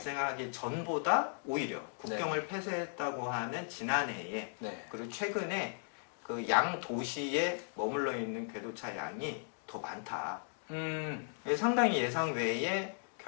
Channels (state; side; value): silent; right; digital silence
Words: 전보다 오히려 국경을 폐쇄했다고 하는 지난해에 그리고 최근에 그 양 도시에 머물러 있는 궤도차 양이 더 많다. 상당히 예상 외의